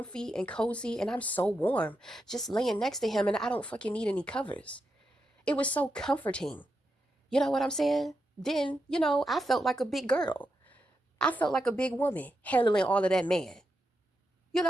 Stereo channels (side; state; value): both; normal; correlation 0.85